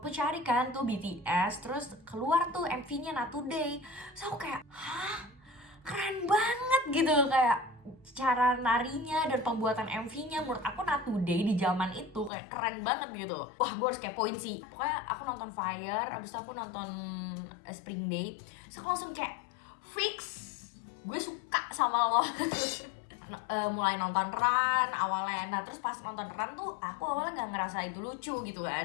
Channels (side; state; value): right; drops out; at 12.3 s